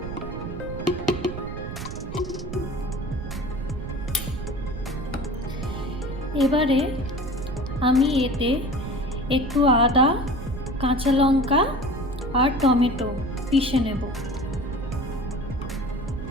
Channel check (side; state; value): right; noise; rumble, 8 dB below the sound